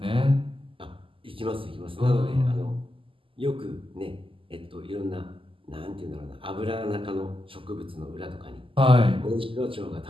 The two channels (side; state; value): left; late; 0.25 ms